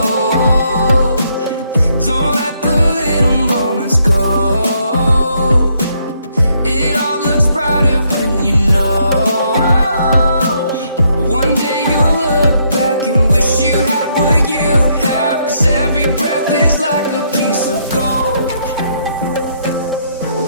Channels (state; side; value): inverted; both; correlation -0.73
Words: don't let the little moments go. It all looks brighter when you know. One day you'll look back and wish you had what you have, 'cause every breath is like a piece of gold.